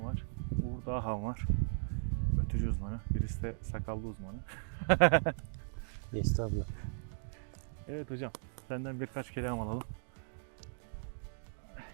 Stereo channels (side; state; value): left; silent; digital silence